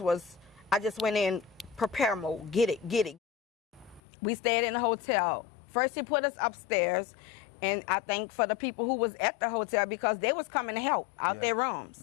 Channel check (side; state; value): right; drops out; at 4.0 s